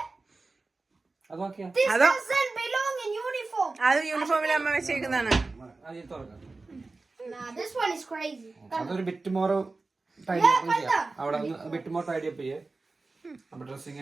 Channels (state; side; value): quieter; left; 3.6 dB